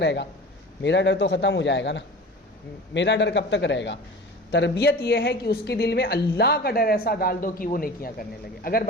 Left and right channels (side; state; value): both; normal; correlation 0.37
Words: گا؟ میرا ڈر تو ختم ہو جائے گا نا. میرا ڈر کب تک رہے گا؟ تربیت یہ ہے کہ اس کے دل میں اللہ کا ڈر ایسا ڈال دو کہ وہ نیکیاں کرنے لگے. اگر